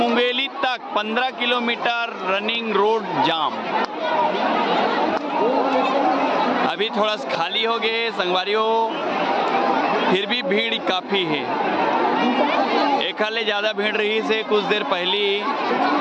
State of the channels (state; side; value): identical; both; correlation 1.00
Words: तक 15 किलोमीटर रनिंग रोड जाम। अभी थोड़ा सा खाली हो गए संगवारी हो, फिर भी भीड़ काफ़ी है। एक हाले ज़्यादा भीड़ रही से कुछ देर पहले।